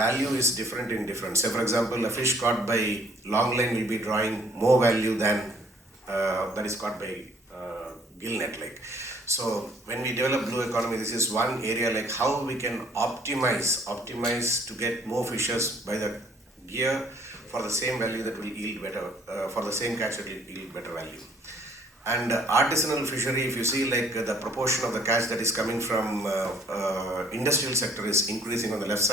is different in different. Say for example, a fish caught by long line will be drawing more value than that is caught by gill net. Like, so when we develop blue economy, this is one area like how we can optimize to get more fishes by the gear for the same value that will yield better, for the same catch that will yield better value. And artisanal fishery, if you see like the proportion of the catch that is coming from industrial sector is increasing on the left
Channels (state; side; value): normal; both; correlation 0.60